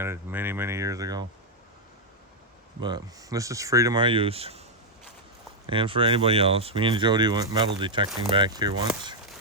many, many years ago. But this is free to my use. And for anybody else. Me and Jody went metal detecting back here once.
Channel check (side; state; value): both; normal; correlation -0.02